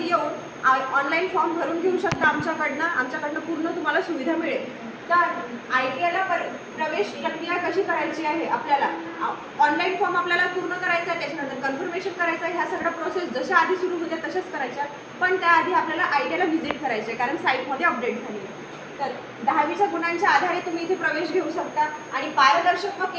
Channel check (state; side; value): identical; both; correlation 1.00